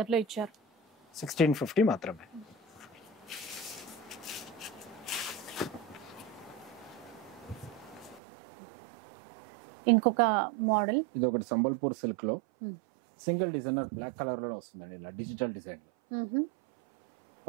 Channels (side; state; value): left; drops out; at 8.2 s